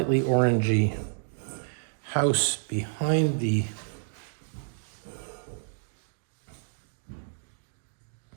orangey house behind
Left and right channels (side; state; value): left; silent; digital silence